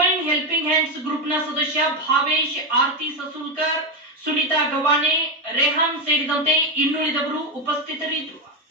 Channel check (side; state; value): both; normal; correlation 0.09